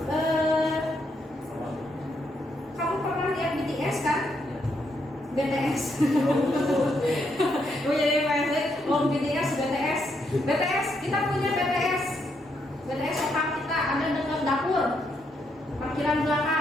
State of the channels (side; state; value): both; normal; correlation 0.77